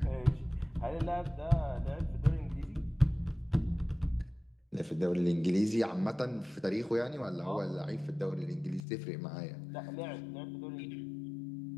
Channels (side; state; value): right; drops out; at 8.8 s